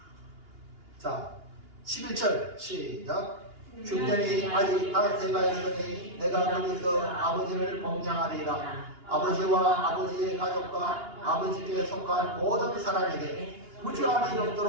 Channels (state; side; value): late; left; 2.8 ms